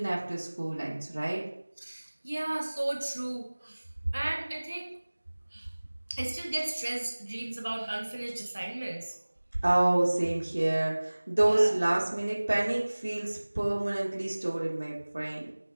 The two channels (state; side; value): inverted; both; correlation -1.00